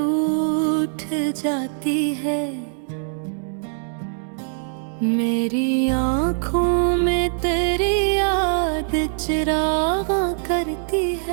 जाती है, मेरी आँखों में तेरी याद चिरागा करती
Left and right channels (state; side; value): silent; left; digital silence